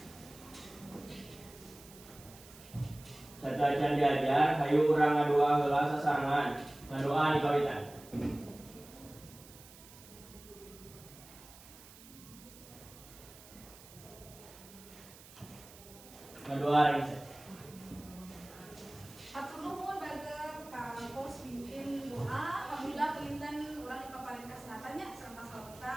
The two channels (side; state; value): right; noise; hiss, 19 dB below the sound